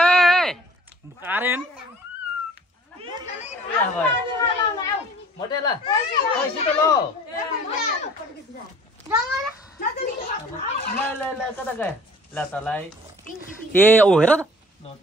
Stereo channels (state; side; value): normal; both; correlation 0.51